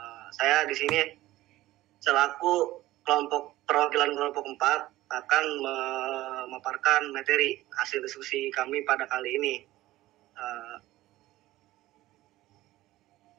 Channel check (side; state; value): left; quieter; 16.6 dB